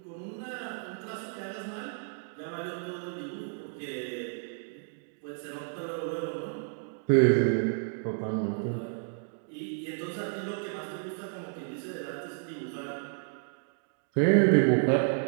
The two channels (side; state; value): left; silent; digital silence